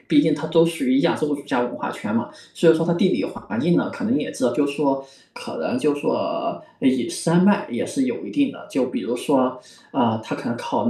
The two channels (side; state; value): both; identical; correlation 1.00